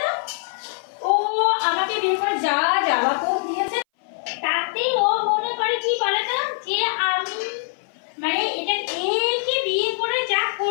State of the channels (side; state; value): right; silent; 60 dB below the other